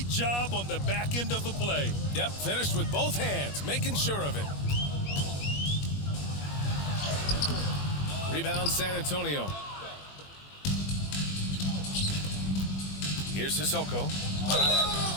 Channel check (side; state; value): right; late; 21 ms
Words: job on the back end of the play. Yep, finished with both hands, making sure of it. Rebound San Antonio. Here's Sissoko.